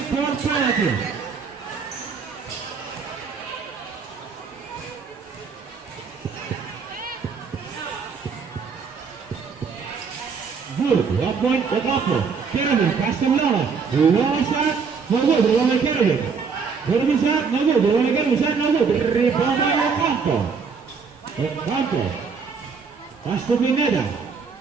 penalty. Good. 1 point Ocampo. Carabin. Pass to Longo. Longo shot. No good. Rebound by Carabin. Carabin shot. No good. Rebound by Carabin. Shot. No good. Rebound by Ocampo. Ocampo. Pass to Pineda.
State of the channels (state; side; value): quieter; left; 5.6 dB